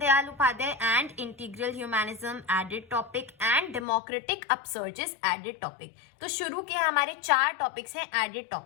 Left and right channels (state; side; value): drops out; right; at 3.9 s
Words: Upadhyay and integral humanism, added topic, and democratic upsurges, added topic. तो शुरू के हमारे 4 टॉपिक्स हैं एडेड